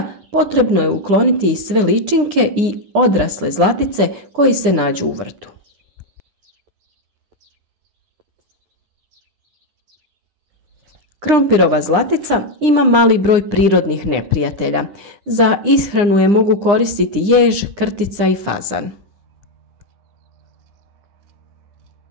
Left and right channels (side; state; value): left; late; 9.8 ms